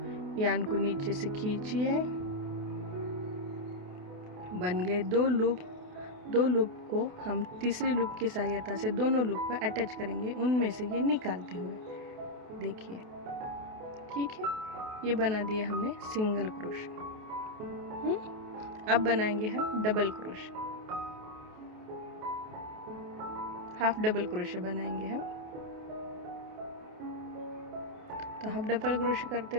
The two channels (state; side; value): late; left; 28 ms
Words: यार्न को नीचे से खींचिए, बन गए 2 लूप। 2 लूप को हम तीसरी लूप की सहायता से दोनों लूप को अटैच करेंगे, उनमें से ये निकालते हुए। देखिए, ठीक है, ये बना दिया हमने सिंगल क्रोशे। अब बनाएंगे हम double crochet, half double crochet बनाएंगे हम। तो हाफ डबल क्रोशे करते